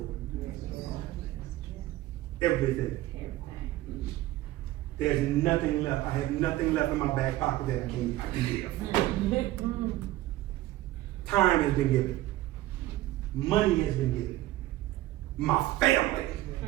it. Everything. There's nothing left. I have nothing left in my back pocket that I can give. Time has been given. Money has been given. My family.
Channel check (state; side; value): quieter; left; 16.3 dB